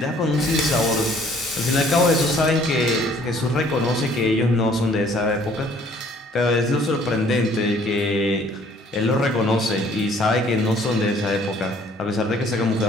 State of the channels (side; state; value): both; normal; correlation 0.58